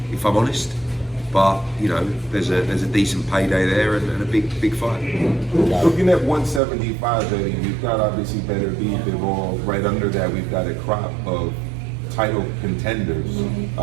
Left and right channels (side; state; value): left; drops out; at 6.6 s